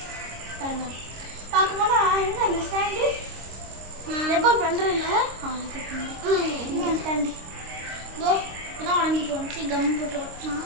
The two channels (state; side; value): late; left; 26 ms